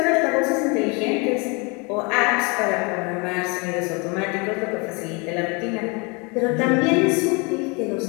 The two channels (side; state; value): right; quieter; 30.1 dB